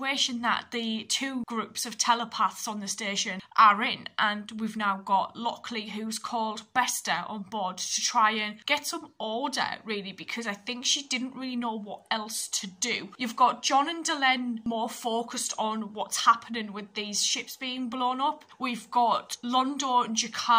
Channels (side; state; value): both; identical; correlation 1.00